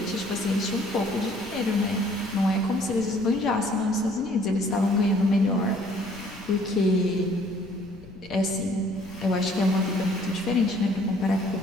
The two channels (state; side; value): noise; left; rumble, 20 dB below the sound